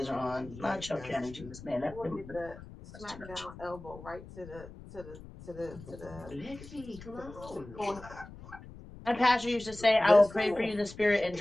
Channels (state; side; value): noise; left; rumble, 16 dB below the sound